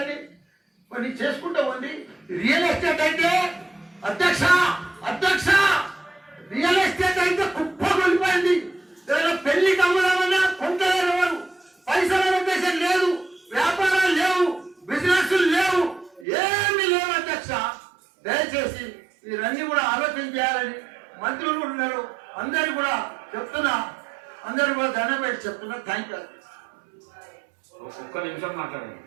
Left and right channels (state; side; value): drops out; left; at 16.2 s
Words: మరి చేసుకుంటా ఉంది. రియల్ ఎస్టేట్ అయితే అధ్యక్ష రియల్ ఎస్టేట్ అయితే కుప్ప కొలిపోయింది. ఏదైనా పెళ్లికి అమ్ముదామన్నా కొంటలేరు ఎవరు. పైసల ఉద్దేశం లేదు, వ్యాపారాలు లేవు, బిజినెస్ లేవు, ఏమీ లేవు అధ్యక్ష. దయచేసి మీరన్నీ కూడా ఆలోచన చేయాలని మంత్రులు కూడా ఉన్నారు. అందరు కూడా చెప్తున్నా, అందరు కూడా దండం పెట్టి చెప్తున్నా. థ్యాంక్ యూ ఒక్క నిమిషం మాట్లాడండి